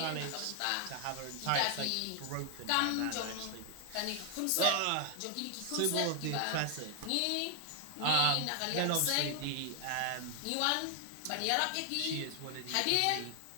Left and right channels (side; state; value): both; different; correlation 0.00